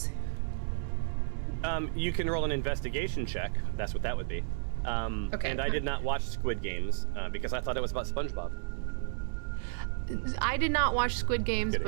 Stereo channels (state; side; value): silent; left; 56 dB below the other